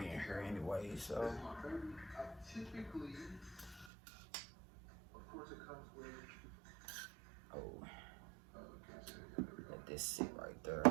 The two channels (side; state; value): left; drops out; at 3.9 s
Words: in here anyway. So, typically, of course, it comes with. Let this sit right there.